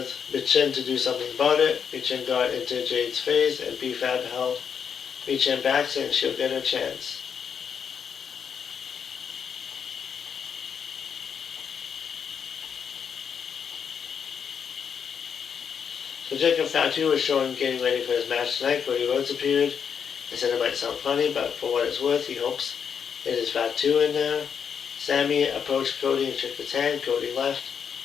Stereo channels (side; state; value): right; quieter; 7.2 dB